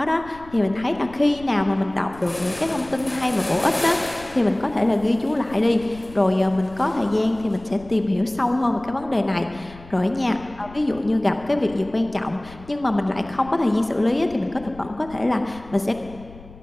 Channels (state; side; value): noise; left; rumble, 20 dB below the sound